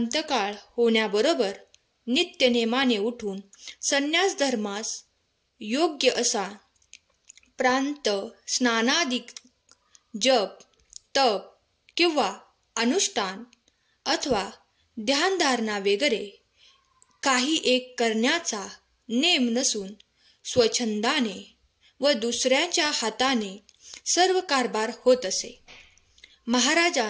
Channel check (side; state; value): both; identical; correlation 1.00